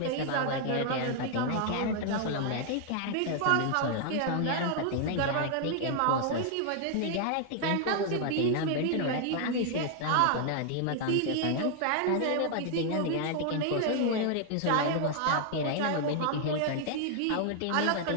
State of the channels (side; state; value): both; different; correlation 0.00